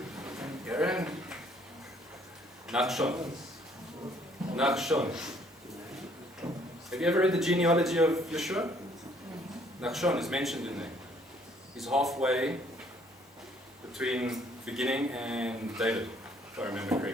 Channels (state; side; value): normal; both; correlation 0.63